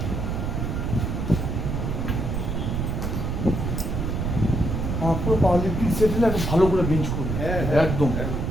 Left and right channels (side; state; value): right; noise; rumble, 1 dB below the sound